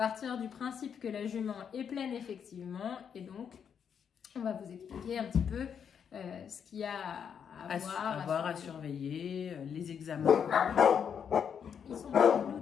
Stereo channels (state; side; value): quieter; right; 7.6 dB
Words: du principe que la jument est pleine effectivement et donc on va vous expliquer un petit peu ce qu'il y a à voir, à surveiller, les examens. Ils sont pas flous